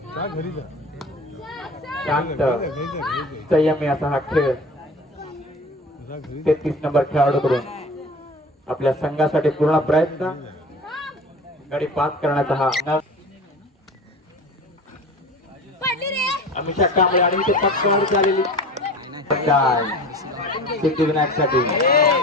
शांत संयमी असा हा खेळ 33 नंबर खेळाडूकडून आपल्या संघासाठी पूर्ण प्रयत्न गडी बाद करण्याचा हा. अमिषा कांबळे आणि इथे पक्कावर झालेली सिद्धिविनायक साठी.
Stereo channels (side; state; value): both; normal; correlation 0.37